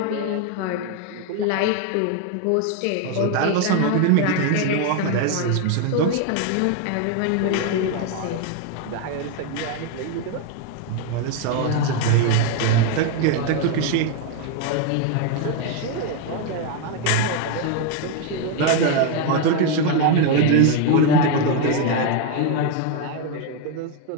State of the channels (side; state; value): both; different; correlation 0.01